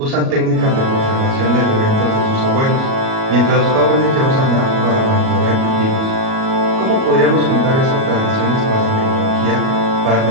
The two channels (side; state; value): left; late; 37 ms